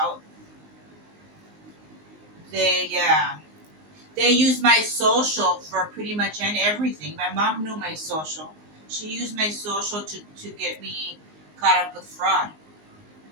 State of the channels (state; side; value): late; left; 19 ms